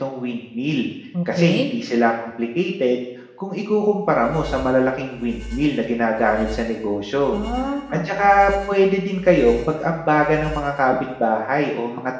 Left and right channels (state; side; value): identical; both; correlation 1.00